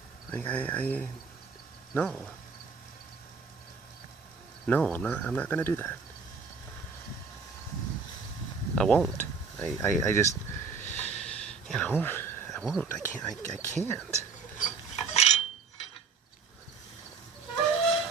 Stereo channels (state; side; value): quieter; left; 5.1 dB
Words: Like no, I'm not gonna do that. I won't. I just, you know, I won't. I can't.